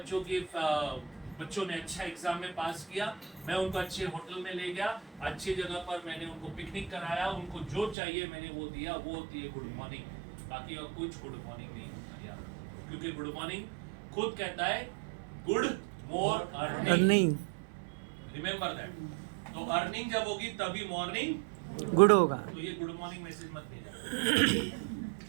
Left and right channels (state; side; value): drops out; left; at 8.0 s